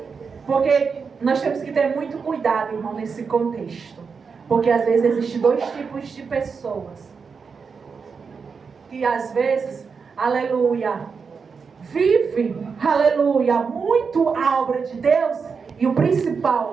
Porque nós temos que ter muito cuidado, irmão, nesse contexto. Porque às vezes existem dois tipos de pessoas. Que às vezes, aleluia, vive, aleluia, muito a obra de Deus. E o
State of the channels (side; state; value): left; quieter; 5.5 dB